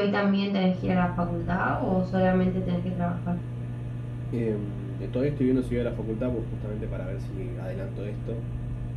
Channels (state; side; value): identical; both; correlation 1.00